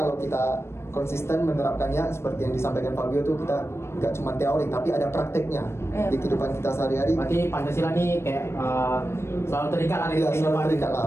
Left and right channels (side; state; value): right; late; 0.12 ms